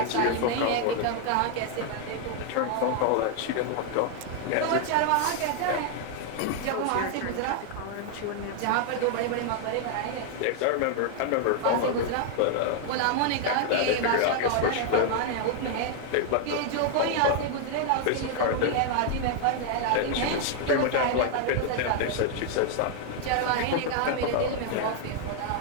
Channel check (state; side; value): different; both; correlation 0.00